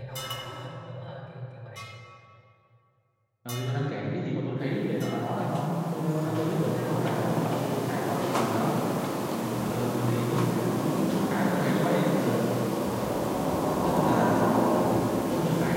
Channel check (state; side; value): identical; both; correlation 1.00